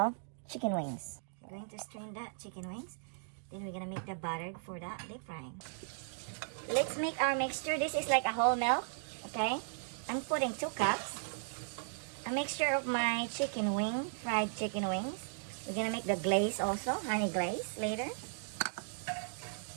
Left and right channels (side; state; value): left; silent; digital silence